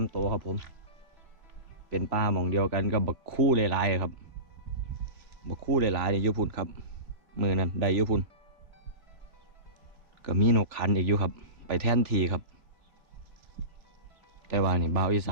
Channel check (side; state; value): left; late; 3.2 ms